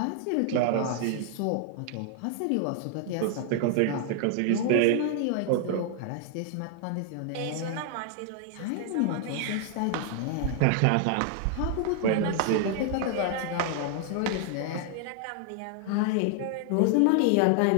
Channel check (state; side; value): different; both; correlation 0.00